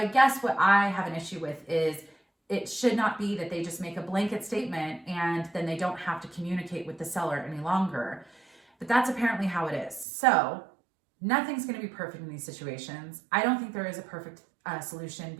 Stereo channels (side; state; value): left; drops out; at 10.1 s